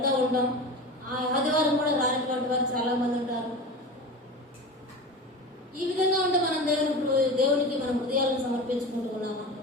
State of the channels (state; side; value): normal; both; correlation 0.29